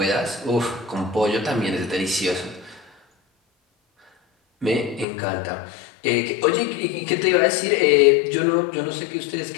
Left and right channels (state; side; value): drops out; right; at 5.1 s